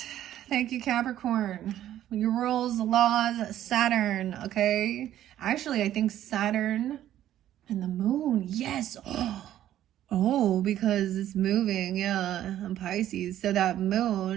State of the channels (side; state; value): left; quieter; 12.1 dB